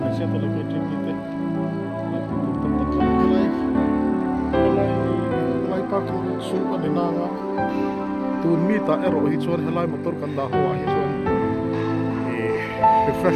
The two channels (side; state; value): both; identical; correlation 1.00